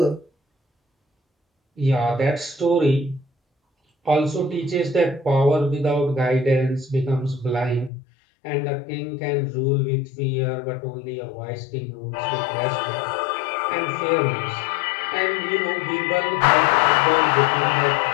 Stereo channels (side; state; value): right; drops out; at 7.9 s